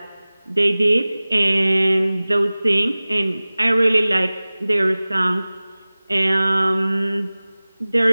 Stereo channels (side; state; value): both; inverted; correlation -0.99